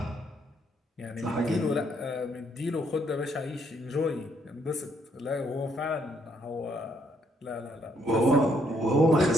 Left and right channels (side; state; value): both; normal; correlation 0.71